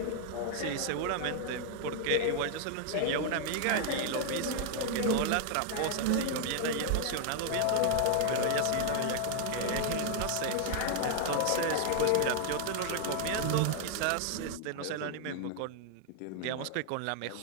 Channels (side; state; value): both; different; correlation 0.00